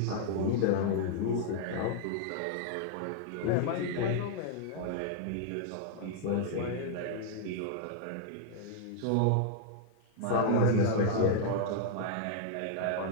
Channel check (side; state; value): both; different; correlation -0.01